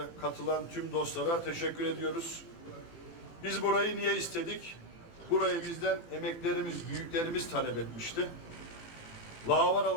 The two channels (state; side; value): late; right; 18 ms